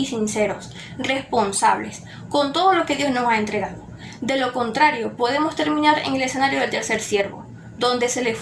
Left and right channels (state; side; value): identical; both; correlation 1.00